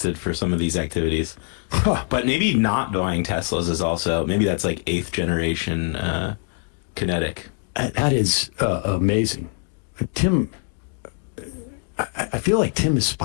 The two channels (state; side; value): quieter; right; 39.9 dB